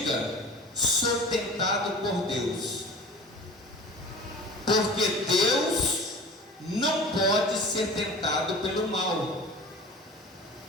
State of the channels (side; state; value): both; normal; correlation 0.38